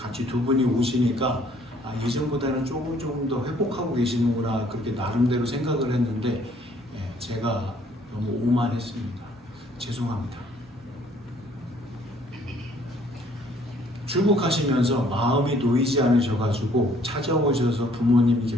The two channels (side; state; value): both; normal; correlation 0.61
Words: 두 분이 오시니까 예전보다는 조금 더 회복하고 계시는구나 그렇게 나름대로 생각을 했는데 제가 너무 오만했습니다. 죄송합니다. 출국하시면서 마음이 놓이지 않으셔가지고 찾아오셔서